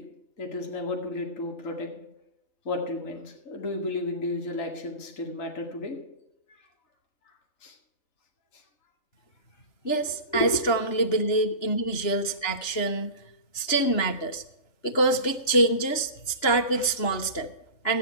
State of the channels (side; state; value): right; late; 3.0 ms